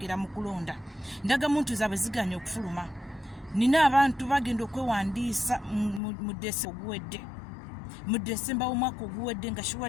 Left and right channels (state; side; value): drops out; right; at 6.0 s